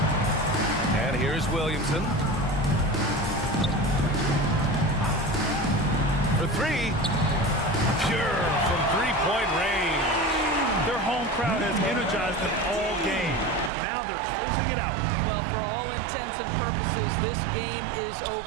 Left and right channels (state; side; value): drops out; left; at 13.7 s